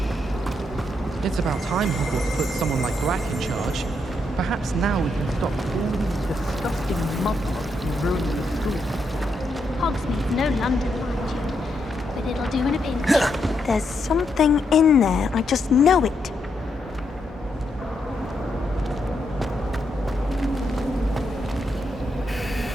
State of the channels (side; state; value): both; normal; correlation 0.80